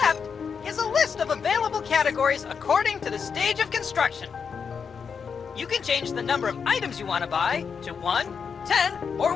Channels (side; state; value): right; quieter; 6.2 dB